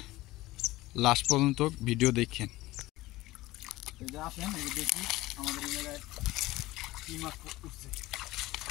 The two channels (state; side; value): quieter; right; 18.2 dB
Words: লাস্ট পর্যন্ত ভিডিও দেখেন। এই যে আসেন, এই যে দেখি আমাদের এই জায়গায় কি মাছ উঠছে।